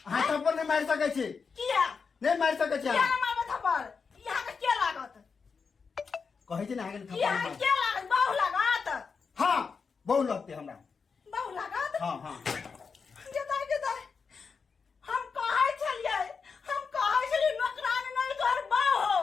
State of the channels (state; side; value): quieter; right; 5.4 dB